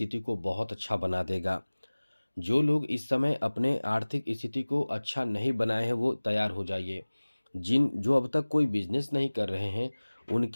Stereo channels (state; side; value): inverted; both; correlation -1.00